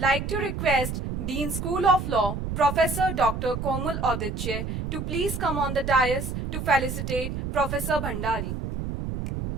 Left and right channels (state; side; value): noise; right; rumble, 4 dB below the sound